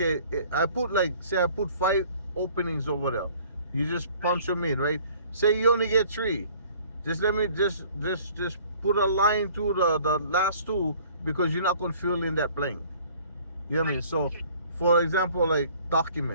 I put 5 openings over there. You just punch them in, right? Say you only get 3. Just let me just put a line through the last 2 because you're not gonna fill in that blank. You know what I mean? So, Okay. for example, like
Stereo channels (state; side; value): inverted; both; correlation -0.53